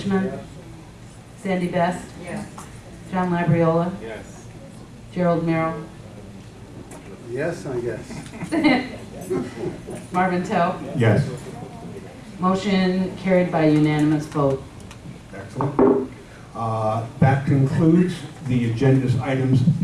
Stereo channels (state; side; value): identical; both; correlation 1.00